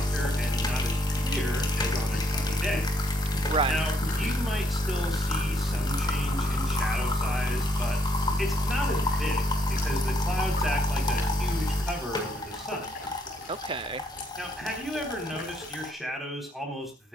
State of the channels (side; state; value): both; normal; correlation 0.71